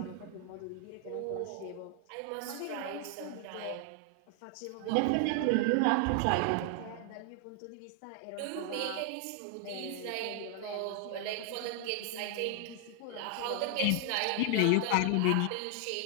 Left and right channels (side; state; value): both; different; correlation 0.00